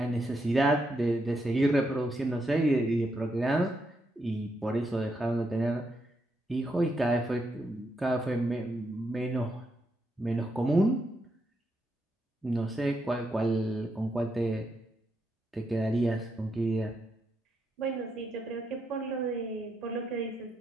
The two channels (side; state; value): both; normal; correlation 0.81